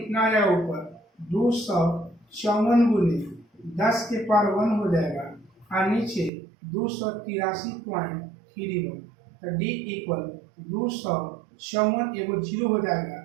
आ जाएगा ऊपर 254 गुने 10 के पावर 1 हो जाएगा और नीचे 283.31। तो d इक्वल 254 एगो 0 हो जाएगा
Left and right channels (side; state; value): left; drops out; at 6.3 s